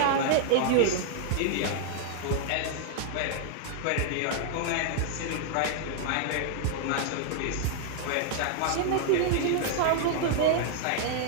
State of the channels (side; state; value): both; different; correlation -0.01